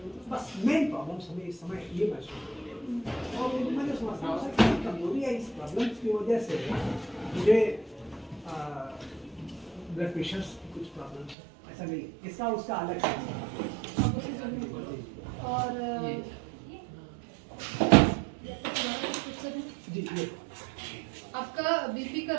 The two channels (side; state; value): left; drops out; at 11.4 s